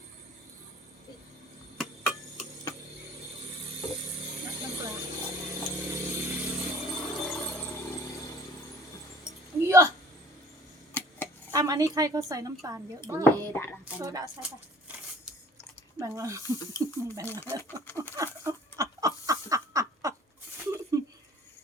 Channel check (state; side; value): normal; both; correlation 0.49